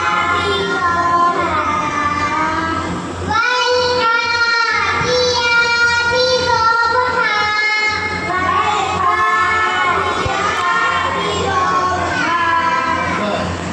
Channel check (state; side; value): identical; both; correlation 1.00